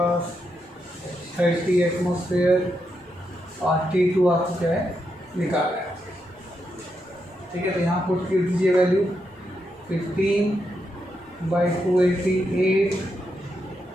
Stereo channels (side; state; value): both; normal; correlation 0.83